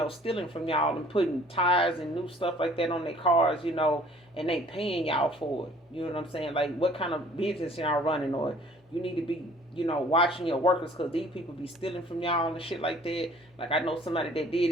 stealing from y'all and putting tires and new stuff like that on their cars, and they paying y'all for it. You know what I'm saying? Like, what kind of business y'all running? Or you need to be, watching your workers, because these people be stealing from y'all and shit like that. Like, I know somebody that did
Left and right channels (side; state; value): both; normal; correlation 0.54